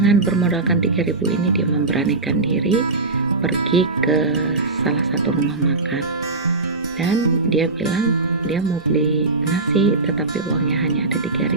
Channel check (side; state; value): left; quieter; 3.5 dB